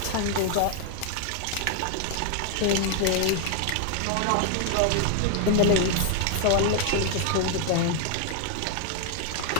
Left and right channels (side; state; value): both; different; correlation 0.01